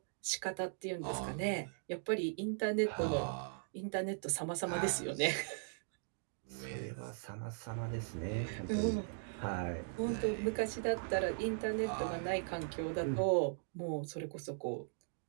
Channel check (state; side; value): silent; left; digital silence